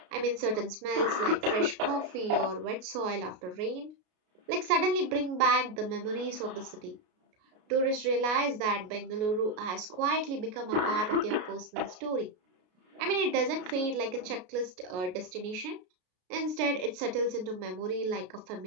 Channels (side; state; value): left; late; 33 ms